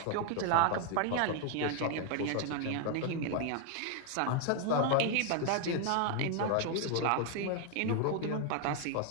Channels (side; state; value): both; different; correlation 0.00